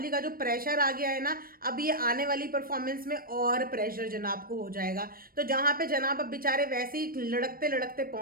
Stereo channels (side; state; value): left; late; 0.42 ms